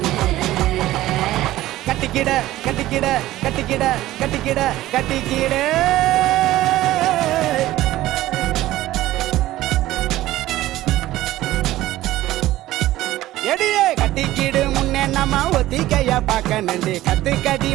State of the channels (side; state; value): left; quieter; 15.7 dB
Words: கட்டிக்கிட கட்டிக்கிட கட்டிக்கிட கட்டிக்கிட கட்டிக்கிட எடியே கட்டிக்கிடு முன்னே நம்ம ஒத்திக்கைய பார்க்கணுண்டி கத்துக்கடி